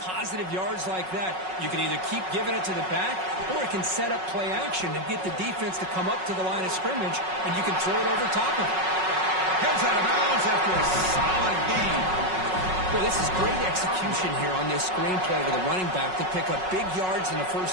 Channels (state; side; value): late; left; 5.4 ms